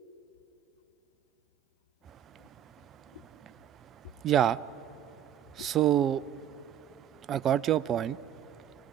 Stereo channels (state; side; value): quieter; left; 10.4 dB